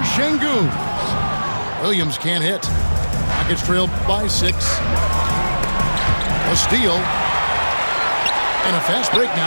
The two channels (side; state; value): both; inverted; correlation -1.00